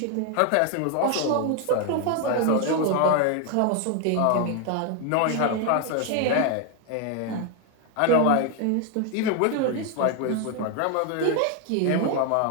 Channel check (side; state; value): both; different; correlation 0.01